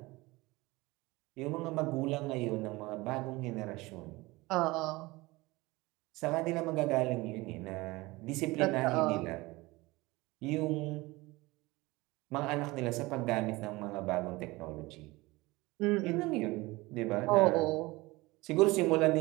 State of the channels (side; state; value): left; quieter; 21.6 dB